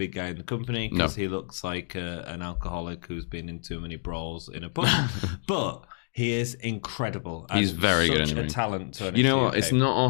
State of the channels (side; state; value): right; silent; digital silence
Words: guy in the company because he looks like an alcoholic who's been in too many brawls in a pub. But he is incredible. And he's very such good a talent to NXT You know what? UK. It's not